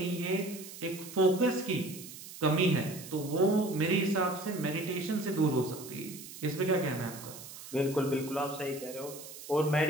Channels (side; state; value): right; noise; hiss, 14 dB below the sound